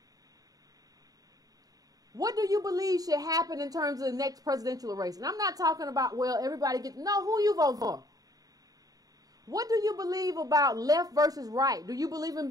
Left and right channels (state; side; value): late; left; 0.18 ms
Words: What do you believe should happen in terms of the next presidential race? And I'm not talking about, well, everybody who you vote for. What do you believe about left versus right? Do you believe in